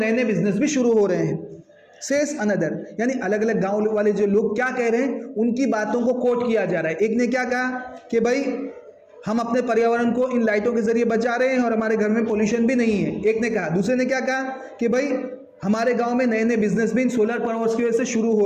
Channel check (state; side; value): identical; both; correlation 1.00